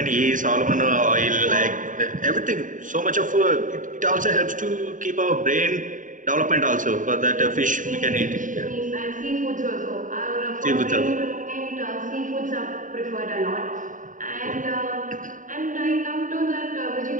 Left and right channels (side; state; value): left; late; 0.38 ms